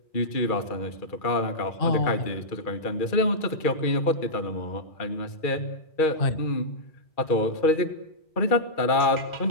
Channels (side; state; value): right; late; 2.3 ms